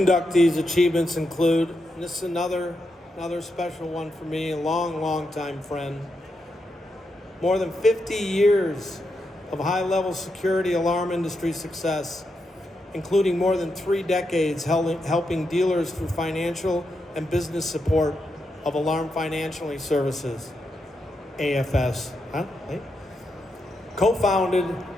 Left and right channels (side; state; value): both; normal; correlation 0.84